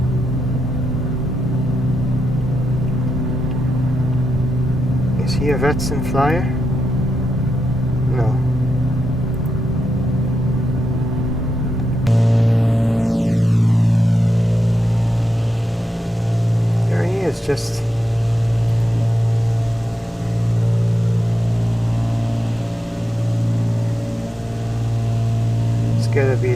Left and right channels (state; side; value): normal; both; correlation 0.86